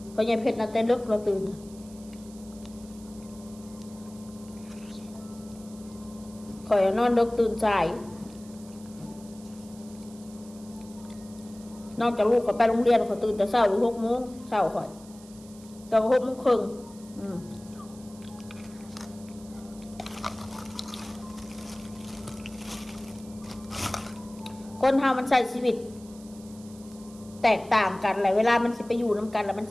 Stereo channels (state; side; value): noise; right; hiss, 22 dB below the sound